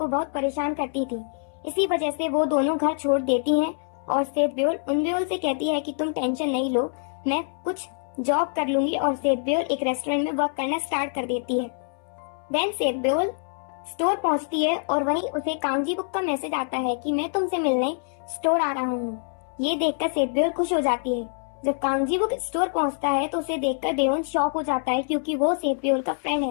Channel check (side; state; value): right; silent; 62 dB below the other